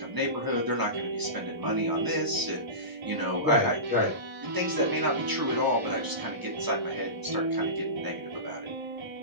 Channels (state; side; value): late; left; 1.0 ms